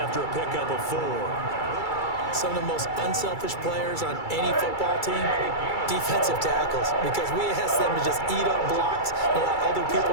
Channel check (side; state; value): right; late; 2.3 ms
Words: a pickup of 4. Some of the most unselfish players on any football team, defensive tackles, because we ask them to just eat up blocks and allow other people